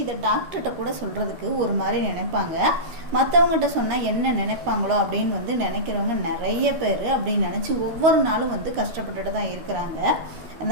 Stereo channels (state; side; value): late; left; 13 ms